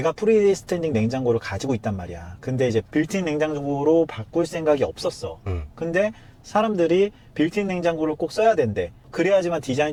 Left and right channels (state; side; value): identical; both; correlation 1.00